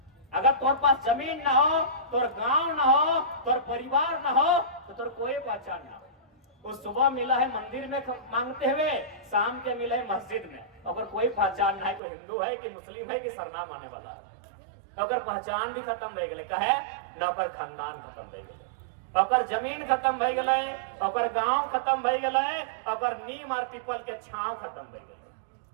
अगर तोर पास जमीन ना हो, तोर गांव ना हो, तोर परिवार ना हो, तो तोर कोई पहचान ना हो। उस सुबह मिला है मंदिर में मांगते हुए, शाम के मिला है मस्जिद में, अगर कोई पहचान ना है, कोई हिंदू है कि मुस्लिम है कि सरनाम आने वाला है, अगर पहचान भी खत्म रह गए, कहे न ओकर खानदान खत्म रह गए, ओकर जमीन खत्म भई गए, ओकर गांव खत्म भई गए, ओकर नीम और पीपल के छांव खत्म भई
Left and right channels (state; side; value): drops out; left; at 12.0 s